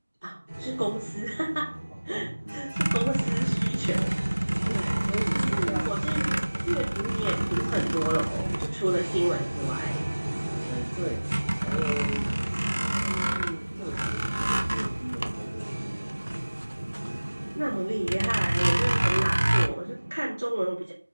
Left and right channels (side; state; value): both; inverted; correlation -1.00